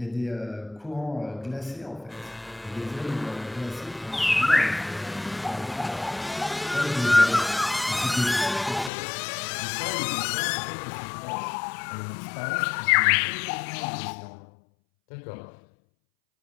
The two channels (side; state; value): right; drops out; at 8.9 s